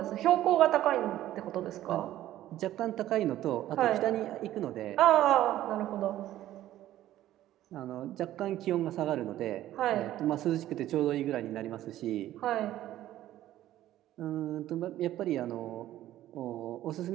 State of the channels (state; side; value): quieter; left; 13.6 dB